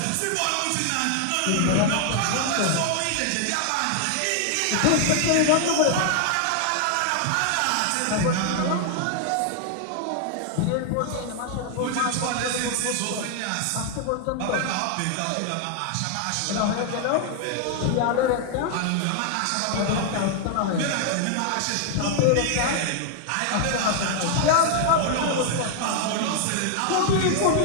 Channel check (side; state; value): both; different; correlation 0.00